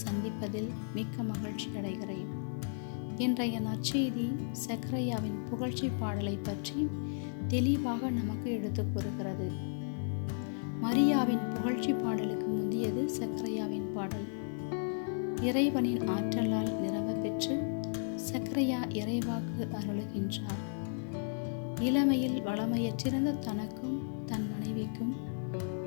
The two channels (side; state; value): right; silent; 55 dB below the other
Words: சந்திப்பதில் மிக்க மகிழ்ச்சி அடைகிறேன். இன்றைய நற்செய்தி சக்கரையாவின் புகழ்ச்சி பாடலை பற்றி தெளிவாக நமக்கு எடுத்துக் கூறுகிறது. மரியாவின் புகழ்ச்சி பாடலுக்கு முந்தியது சக்கரையாவின் பாடல். இறைவனின் ஆற்றலால் நிரம்ப பெற்று சக்கரையா இறைவாக்கு அருளுகின்றார். இளமையில் வளமையற்றிருந்த தனக்கும் தன் மனைவிக்கும்